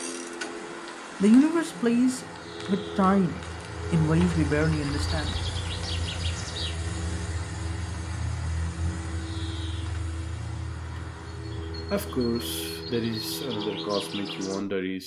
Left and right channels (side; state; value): both; identical; correlation 1.00